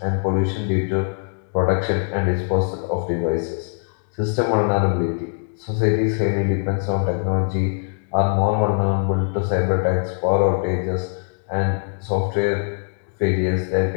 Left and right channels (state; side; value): silent; right; digital silence